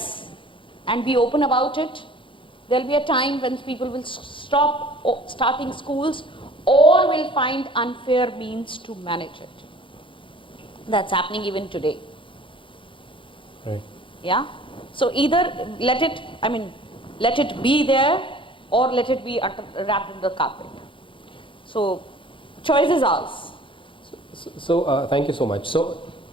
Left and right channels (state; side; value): late; right; 0.25 ms